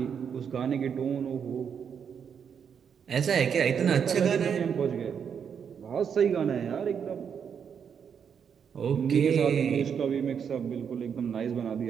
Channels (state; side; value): quieter; left; 7.3 dB